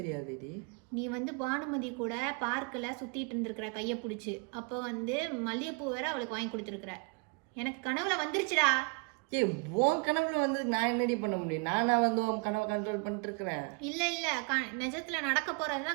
நீ வந்து பானுமதி கூட பார்க்கில் சுத்திட்டு இருந்திருக்கிற கையை பிடிச்சி, அப்போ வந்து மல்லிகைப்பூ வேற அவளுக்கு வாங்கி கொடுத்துருக்குற. எனக்கு கனவுல வந்துருச்சுடா. உன் கனவுல வந்து நான் என்னடி பண்ண முடியும்? நானா வந்து உன் கனவை கண்ட்ரோல் பண்ணிட்டு இருக்கிறேன். இல்ல நிஜத்துல நடக்க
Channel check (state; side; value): quieter; left; 33.4 dB